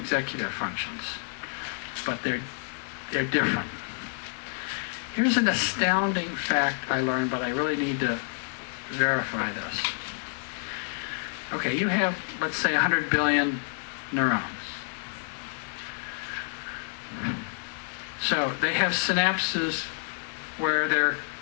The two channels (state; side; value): silent; right; digital silence